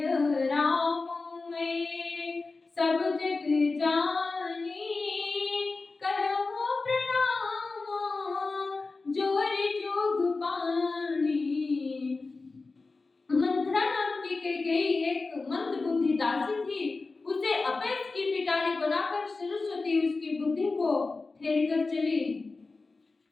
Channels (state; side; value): quieter; right; 3.8 dB